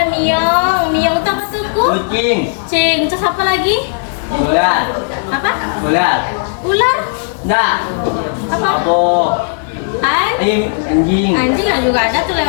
miong. Miong tuh apa tuh? Kucing. Terus apa lagi? Ular. Apa? Ular. Enggak. Apa? Anjing. Anjing juga ada tuh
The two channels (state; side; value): silent; right; digital silence